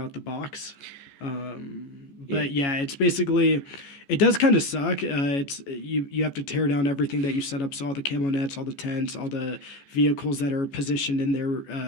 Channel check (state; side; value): late; right; 14 ms